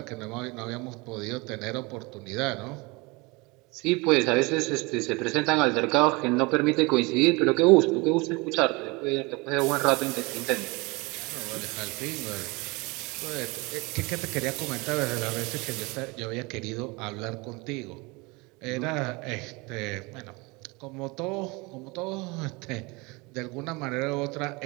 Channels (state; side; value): quieter; left; 26.0 dB